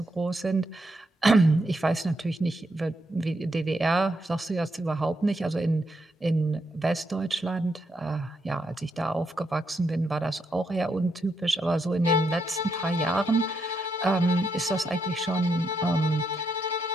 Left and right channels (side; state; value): both; normal; correlation 0.80